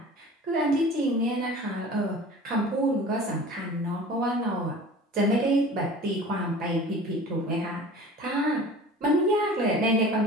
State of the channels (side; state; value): both; normal; correlation 0.41